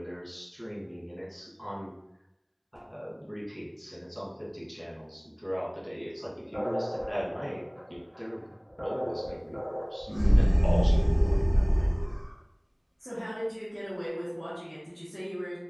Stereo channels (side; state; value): both; identical; correlation 1.00